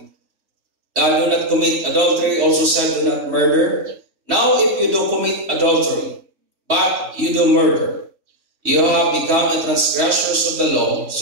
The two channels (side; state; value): left; late; 3.1 ms